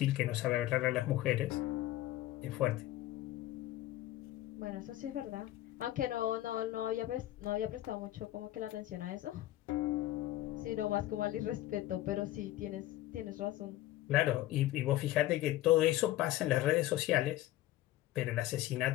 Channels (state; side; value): quieter; right; 15.0 dB